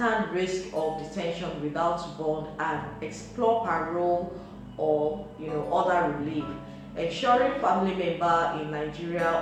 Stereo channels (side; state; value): both; identical; correlation 1.00